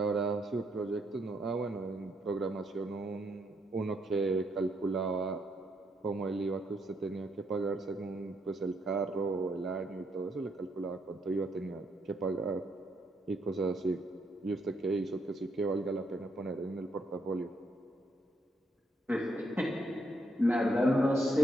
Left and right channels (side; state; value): both; normal; correlation 0.75